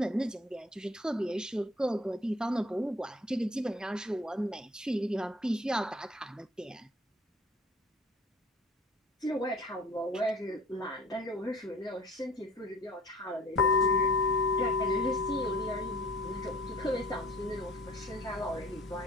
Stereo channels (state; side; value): normal; both; correlation 0.50